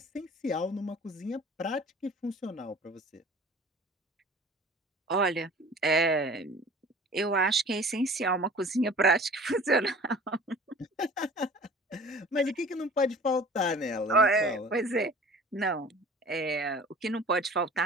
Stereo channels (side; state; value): both; normal; correlation 0.45